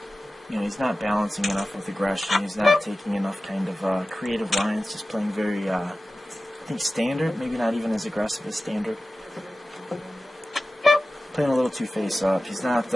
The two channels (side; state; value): both; normal; correlation 0.95